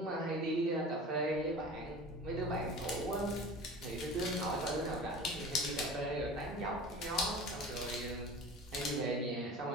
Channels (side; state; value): both; normal; correlation 0.38